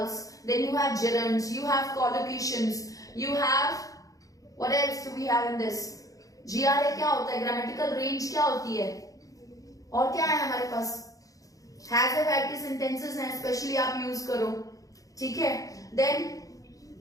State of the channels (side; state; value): right; late; 0.17 ms